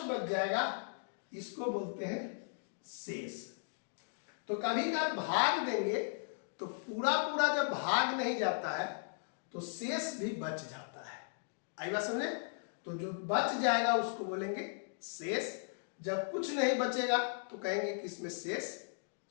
बच जाएगा इसको बोलते हैं शेष। तो कभी कभी भाग देंगे तो पूरा पूरा जब भाग नहीं जाता है तो शेष भी बच जाता है। आई बात समझे? तो जो बच जाएगा उसको बोलेंगे शेष। जब कुछ नहीं बचेगा तो कहेंगे कि इसमें शेष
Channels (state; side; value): silent; right; digital silence